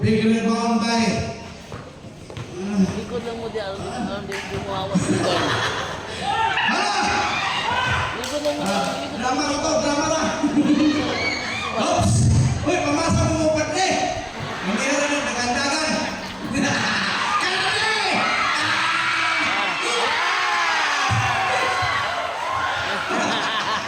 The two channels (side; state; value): both; identical; correlation 1.00